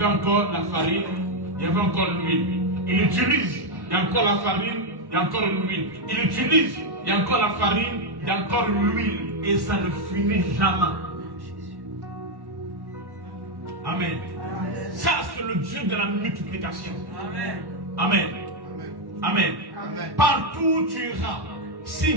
encore la farine, il y avait encore l'huile. Il utilise, il y a encore la farine, il y a encore l'huile. Il utilise, il y a encore la farine, il y a encore l'huile. Et ça ne finit jamais. Amen. Ça, c'est le Dieu de la multiplication. Amen. Amen. Amen. Amen. Partout où tu iras, si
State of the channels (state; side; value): late; left; 1.1 ms